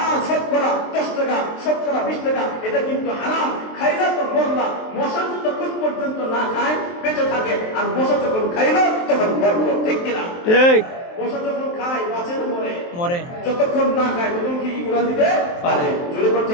শতকরা 10 টাকা, শতকরা 20 টাকা, এটা কিন্তু হারাম। খাইলা তো মরলা। মশা যতক্ষণ পর্যন্ত না খায় বেঁচে থাকে, আর মশা যখন খাইলো তখন মরলো। ঠিক কিনা? ঠিক। মশা যখন খায় বাঁচে না মরে? মরে। যতক্ষণ না খায় তখন কি উড়ান দিতে পারে? জোরে করে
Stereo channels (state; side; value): late; right; 23 ms